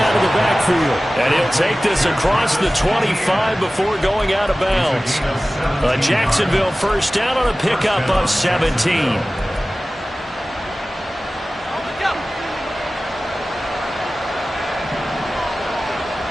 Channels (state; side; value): normal; both; correlation 0.97